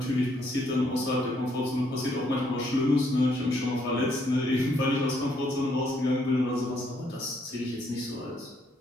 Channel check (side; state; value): both; normal; correlation 0.71